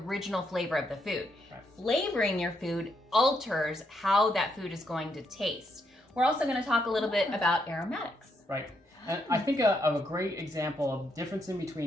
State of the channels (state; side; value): normal; both; correlation 0.77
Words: flavor of the food. Flavoring your food alters how that food is going to taste. We're also going to talk a little bit about aromatics. Right. And I think of a great example of difference in